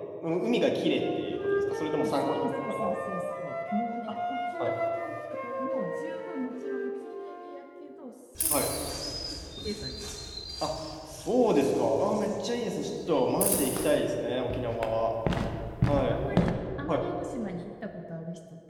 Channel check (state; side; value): identical; both; correlation 1.00